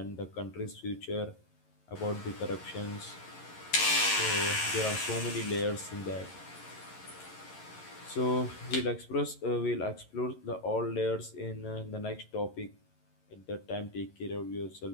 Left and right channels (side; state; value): right; late; 11 ms